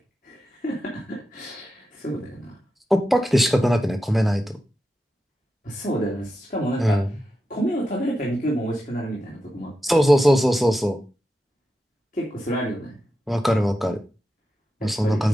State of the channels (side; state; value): both; normal; correlation 0.90